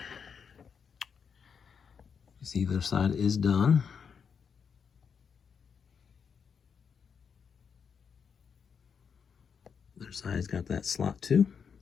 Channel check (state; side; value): quieter; right; 6.6 dB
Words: You see, the other side is done. The other side's got that slot too.